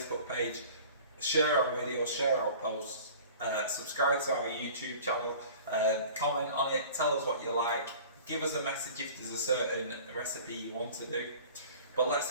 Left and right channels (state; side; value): inverted; both; correlation -0.44